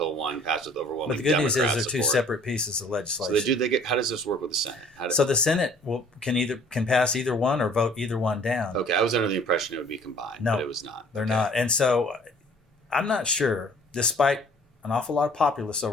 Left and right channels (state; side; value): normal; both; correlation 0.53